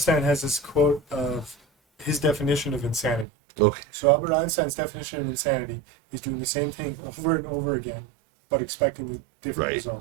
has this quote of his definition of insanity. Okay. So Albert Einstein's definition of insanity is doing the same thing over and over again, but expecting the different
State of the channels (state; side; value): drops out; left; at 3.2 s